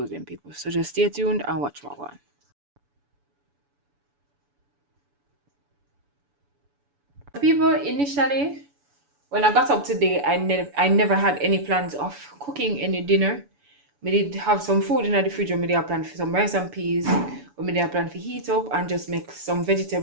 them people. So just stay tuned and watch what one. People, initially when I got up today, I never had any plans of cooking any dinner. Me did have some food in the fridge. Me did have plan for some rice and peas. Or me did have plan for heat up and just make some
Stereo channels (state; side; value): late; left; 7.0 ms